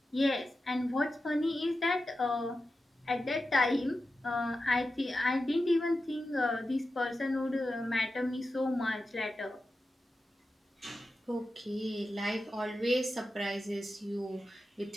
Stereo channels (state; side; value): normal; both; correlation 0.92